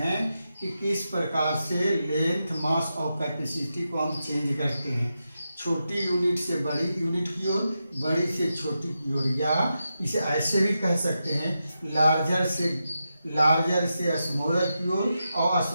कि किस प्रकार से लेंथ, मास और कैपेसिटी को हम चेंज करते हैं, छोटी यूनिट से बड़ी यूनिट की ओर, बड़ी से छोटी की ओर, या इसे ऐसे भी कह सकते हैं लार्जर से स्मॉलर की ओर और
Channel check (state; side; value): inverted; both; correlation -0.88